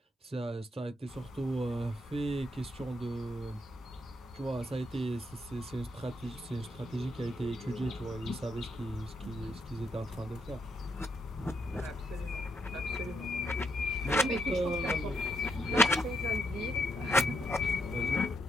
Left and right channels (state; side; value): normal; both; correlation 0.77